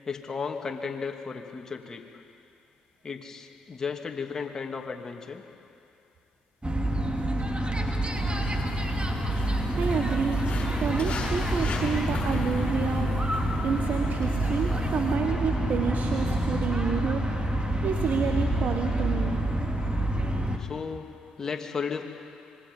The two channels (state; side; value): normal; both; correlation 0.80